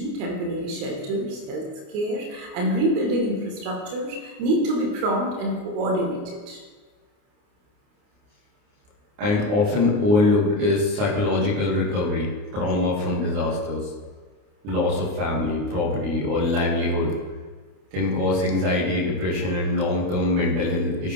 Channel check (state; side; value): late; left; 29 ms